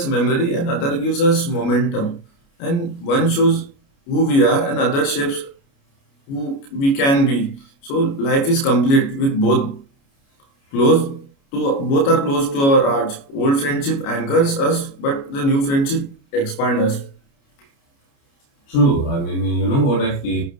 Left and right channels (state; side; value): late; right; 29 ms